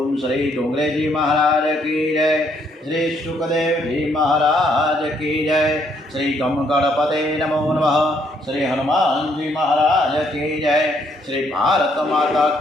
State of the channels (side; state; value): both; normal; correlation 0.70